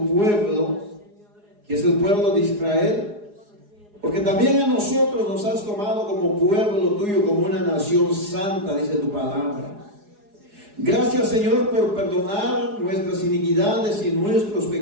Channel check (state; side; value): late; left; 4.8 ms